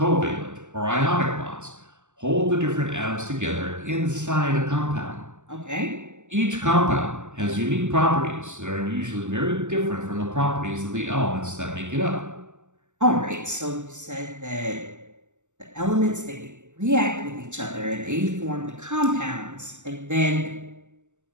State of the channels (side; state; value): left; late; 0.84 ms